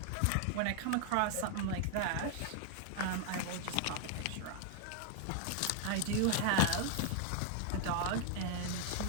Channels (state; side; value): different; both; correlation 0.00